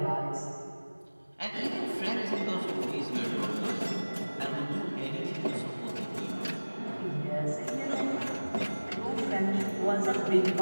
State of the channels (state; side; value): inverted; both; correlation -1.00